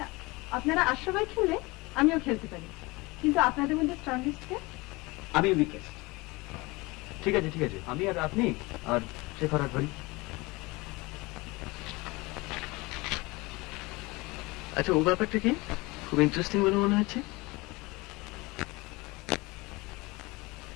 আপনারা 8 সবাই খেললে আমিও খেলতে পারি, কিন্তু আপনাদের মধ্যে স্ট্রংগেস্ট কে? আমি উইকেস্ট। ঠিক আছে ঠিক আছে, আমি আর আপনি আর শেখর আর ধরি। আচ্ছা, ও ব্যাপারটা কি খুব ইন্টারেস্টিং বলে মনে হচ্ছে।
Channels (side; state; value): right; quieter; 23.6 dB